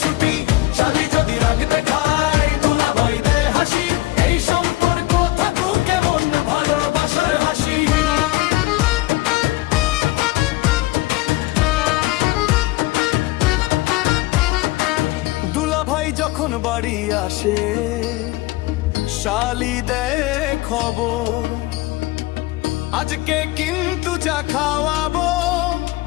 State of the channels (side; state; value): right; quieter; 19.2 dB